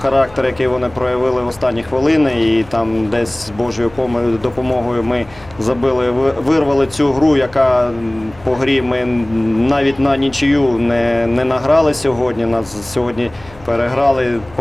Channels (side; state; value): left; noise; hum, 23 dB below the sound